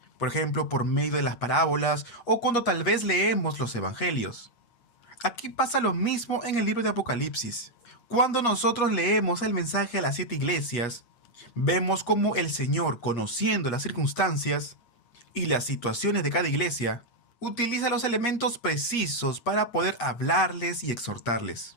Por ejemplo, por medio de las parábolas o cuando tal vez leemos los evangelios. Aquí pasa lo mismo en el libro de Apocalipsis. Cuando nosotros leemos el mensaje a las 7 iglesias, vemos cómo el Señor, conociendo las circunstancias y las situaciones de cada iglesia, utiliza los elementos precisos para poder hablarles y exhortarles.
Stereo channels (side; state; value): right; late; 8.4 ms